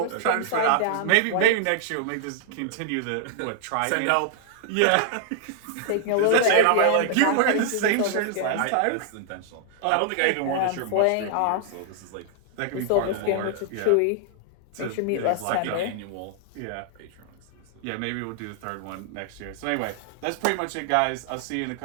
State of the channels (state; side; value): different; both; correlation -0.01